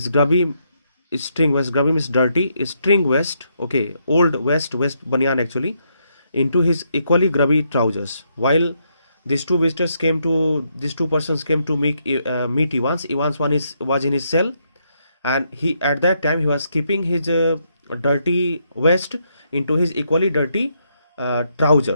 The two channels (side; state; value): both; inverted; correlation -0.77